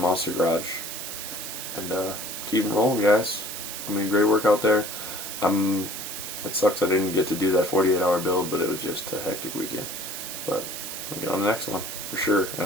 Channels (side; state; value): right; noise; hiss, 7 dB below the sound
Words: Garage. And keep it rolling, guys. I mean, great work out there. It sucks I didn't get to do that 48-hour build, but it was just a hectic weekend. But I'll get on the next one, for sure,